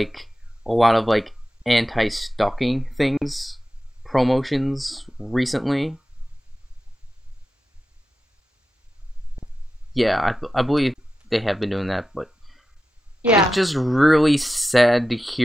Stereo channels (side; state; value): both; normal; correlation 0.92